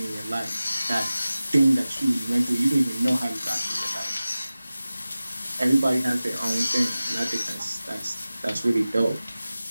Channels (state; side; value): inverted; both; correlation -0.96